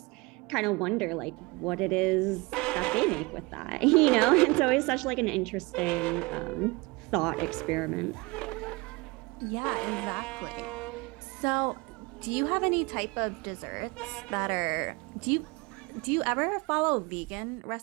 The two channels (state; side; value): quieter; left; 25.3 dB